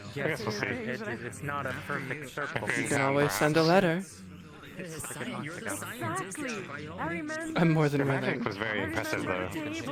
I guess we'll see. It's not a perfect circle. You can always send a letter. You're the Exactly. I remember. I'm more than Your willing. magic was very impressive, though.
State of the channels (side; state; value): both; identical; correlation 1.00